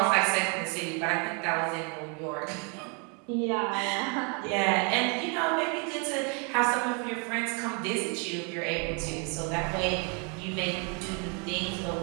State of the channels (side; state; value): left; quieter; 35.8 dB